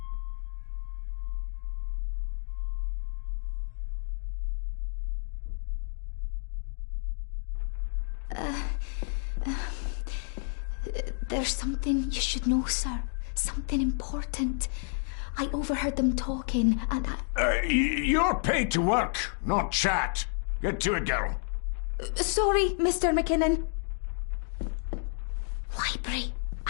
There's something you should know, sir. Something important. I overheard them talking, and You're paid to work, not chat. Get to it, girl. Sorry, Mr. McKinnon. Library,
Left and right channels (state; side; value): silent; right; 58 dB below the other